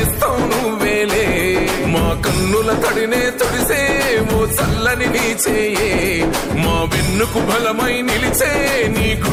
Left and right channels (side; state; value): both; identical; correlation 1.00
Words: నువ్వేలే. మా కన్నుల తడినే తొడిసే ఓ చల్లని నీ చేయే, మా వెన్నుకు బలమై నిలిచే నీ